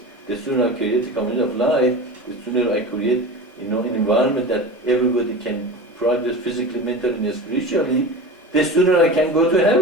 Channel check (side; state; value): both; normal; correlation 0.31